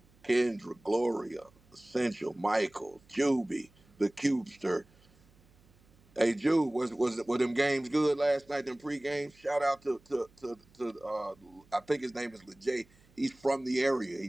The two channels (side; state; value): right; noise; hum, 29 dB below the sound